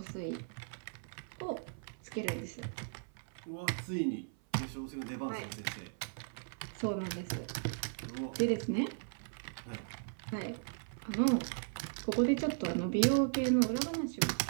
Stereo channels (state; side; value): silent; left; 53 dB below the other